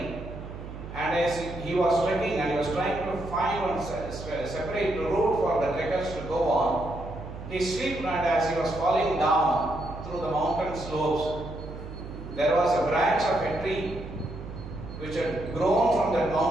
and as he was trekking and he was trying to find one separate route for the trekkers to go on, he slipped, and as he was falling down through the mountain slopes, there was a branch of a tree which had grown from that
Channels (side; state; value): right; noise; hum, 11 dB below the sound